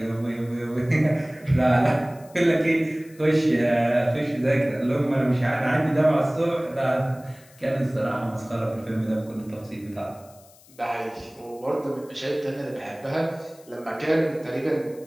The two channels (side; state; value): left; noise; hiss, 26 dB below the sound